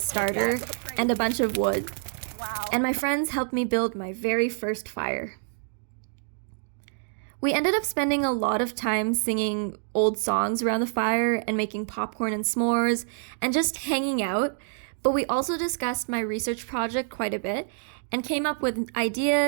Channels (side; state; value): left; silent; digital silence